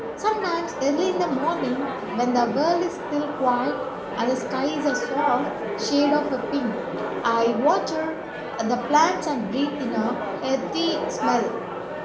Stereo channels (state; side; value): identical; both; correlation 1.00